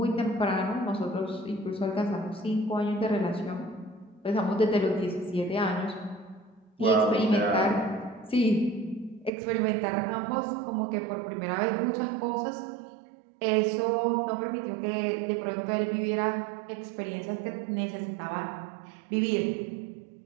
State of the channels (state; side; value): drops out; left; at 9.3 s